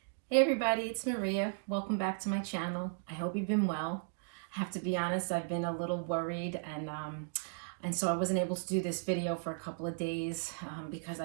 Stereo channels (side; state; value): left; silent; digital silence